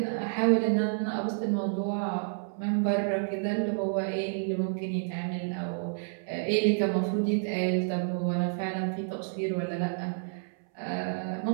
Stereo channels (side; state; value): left; silent; 58 dB below the other